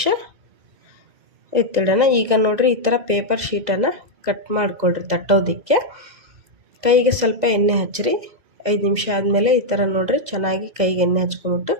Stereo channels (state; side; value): late; left; 2.0 ms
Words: ಎತ್ತಿಡೋಣ. ಈಗ ನೋಡಿರಿ, ಈ ಥರ ಪೇಪರ್ ಶೀಟನ್ನು ಕಟ್ ಮಾಡಿಕೊಳ್ರಿ ತಟ್ಟೋದಕ್ಕೆ. ಕೈಗೆ ಸ್ವಲ್ಪ ಎಣ್ಣೆ ಹಚ್ಚಿರಿ. 5 ನಿಮಿಷ ಆದಮೇಲೆ ಈ ಥರ ನೋಡಿರಿ, ಚೆನ್ನಾಗಿ ಕೈಗೆ ಎಣ್ಣೆ ಹಚ್ಕೊಂಬಿಟ್ಟು